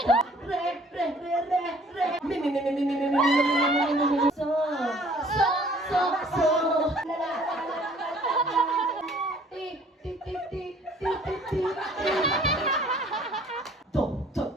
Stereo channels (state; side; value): normal; both; correlation 0.56